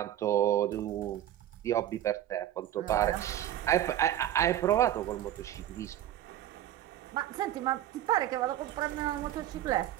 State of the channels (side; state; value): left; quieter; 12.3 dB